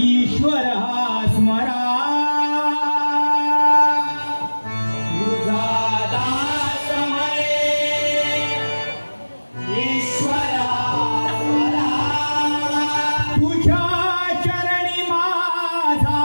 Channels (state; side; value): inverted; both; correlation -1.00